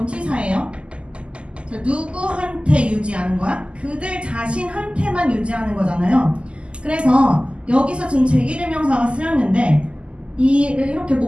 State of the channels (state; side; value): late; left; 0.053 ms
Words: 자, 누구한테 유지하는 거야? 그들 자신한테만 유지하는 거잖아요. 그래서 여기서 지금 제기대명사가 쓰였는데 이렇게